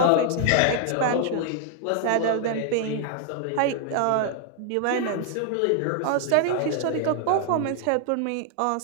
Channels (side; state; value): both; different; correlation 0.00